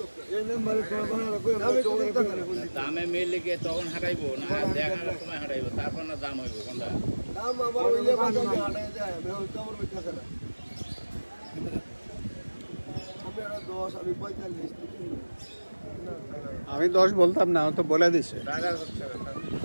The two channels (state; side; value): inverted; both; correlation -1.00